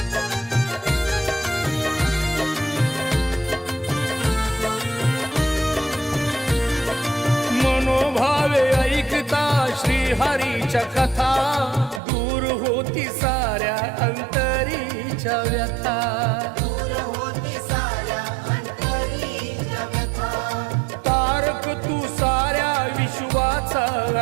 मनोभावे ऐकता श्रीहरीच्या कथा, दूर होती साऱ्या अंतरीच्या व्यथा। दूर होती साऱ्या अंतरीच्या व्यथा। तारक तू साऱ्या विश्वाचा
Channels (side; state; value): left; drops out; at 12.0 s